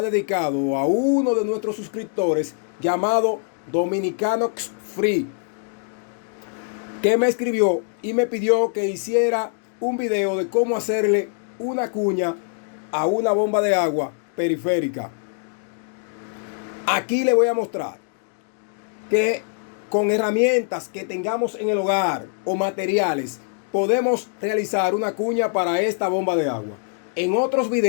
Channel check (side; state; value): right; silent; 61 dB below the other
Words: a uno de nuestros suscriptores llamado Dominicanox Free, que me escribió y me pidió que hiciera un video de cómo hacerle una cuña a una bomba de agua periférica. Aquí le voy a mostrar que con herramientas que tengamos en el hogar o materiales podemos realizar una cuña para esta bomba de agua. En otros